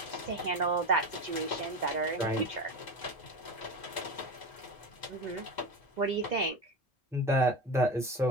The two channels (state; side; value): normal; both; correlation 0.24